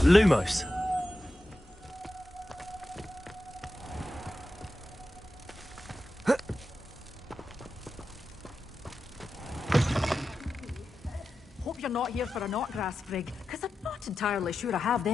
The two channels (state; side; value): normal; both; correlation 0.91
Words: Lumos. Hope you're not here for a knotgrass frig, because I'm not entirely sure I have